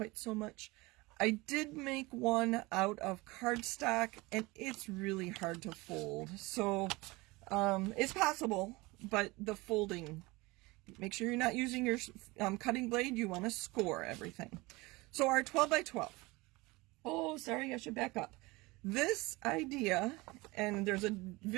so much. I did make one out of cardstock, and it's really hard to fold. So it's possible, but the folding, make sure you're not using your cutting blade. You want to score everything. So our 12 by 12. Oh, sorry, I should back up. This idea, and there's a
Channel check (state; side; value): quieter; left; 22.8 dB